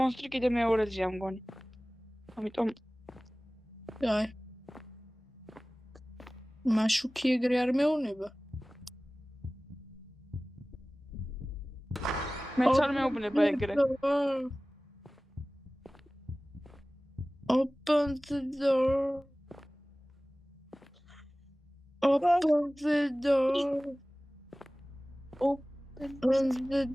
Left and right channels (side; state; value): both; normal; correlation 0.98